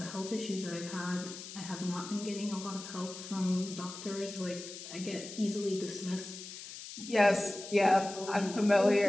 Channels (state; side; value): noise; left; hiss, 12 dB below the sound